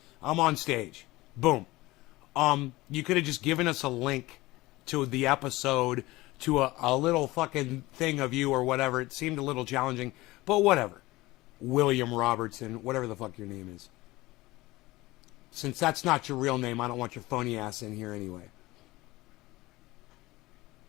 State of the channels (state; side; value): quieter; right; 19.6 dB